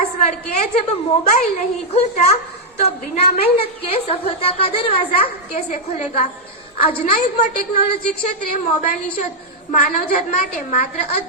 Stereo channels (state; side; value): normal; both; correlation -0.03